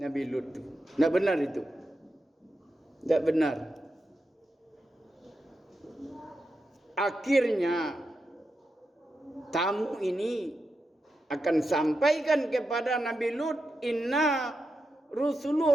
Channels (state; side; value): normal; both; correlation 0.88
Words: Lut itu. Tidak benar itu. Tidak benar. Akhirnya tamu ini akan sampaikan kepada Nabi Lut, inna